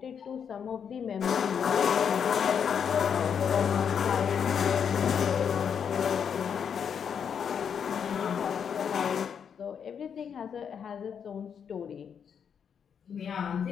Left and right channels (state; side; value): quieter; right; 7.4 dB